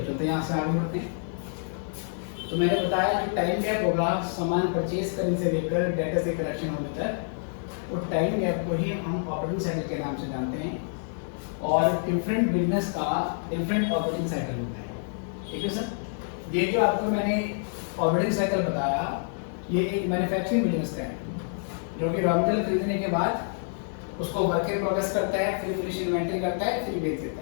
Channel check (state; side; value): silent; right; digital silence